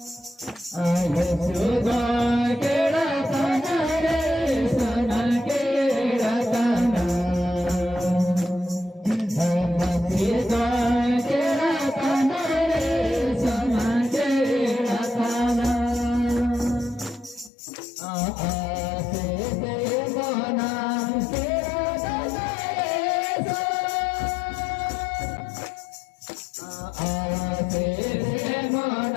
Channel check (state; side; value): drops out; right; at 17.5 s